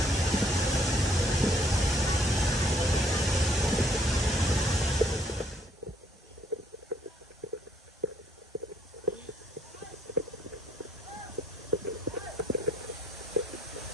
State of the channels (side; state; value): both; normal; correlation 0.66